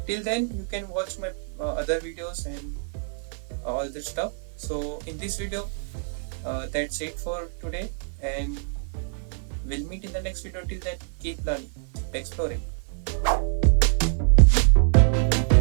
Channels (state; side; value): silent; left; 56 dB below the other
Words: till then you can watch my other videos and all that stuff. So in this video, that's it for today, and we'll meet in the next video. Till then, keep learning, keep exploring.